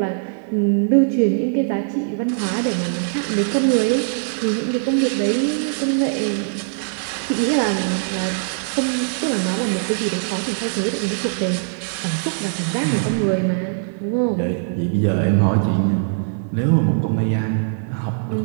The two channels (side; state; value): left; silent; 57 dB below the other